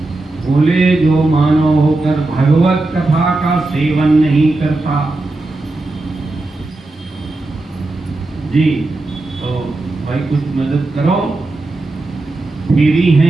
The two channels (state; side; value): quieter; left; 3.0 dB